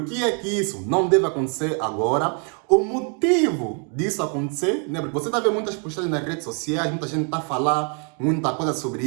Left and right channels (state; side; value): quieter; left; 39.7 dB